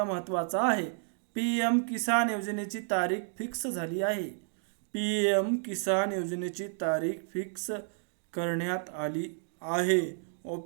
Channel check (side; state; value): left; silent; digital silence